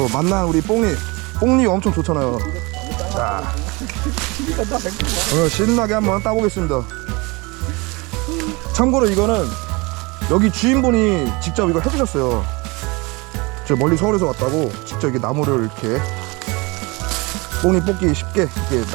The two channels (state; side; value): quieter; left; 26.0 dB